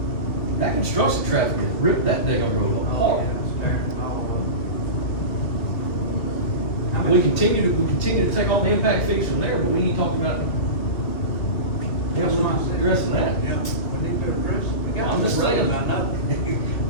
That construction traffic has ripped that damn road up hard. We continue to take all the impact fees from there, but we ain't talking about Yeah, we're not addressing that. Yeah, we need to address it. We got I'm just to, I saying. know.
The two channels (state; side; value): late; right; 2.6 ms